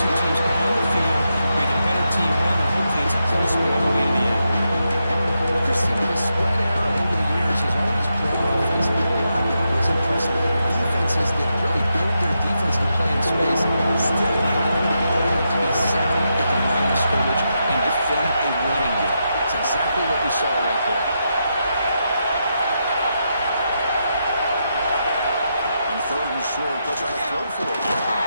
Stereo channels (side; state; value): both; inverted; correlation -0.84